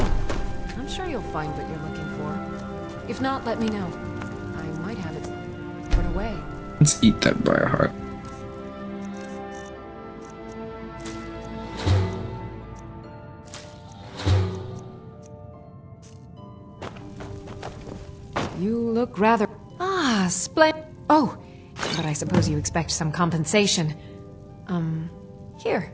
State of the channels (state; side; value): identical; both; correlation 1.00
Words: I'm sure you'll find what you're looking for. If not, let me know. I might have it put away. Let's eat that briar heart. You look rather... Ah, splendid. Oh, but I suppose you expect some compensation. Here.